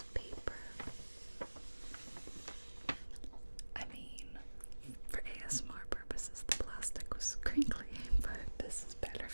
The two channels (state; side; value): inverted; both; correlation -1.00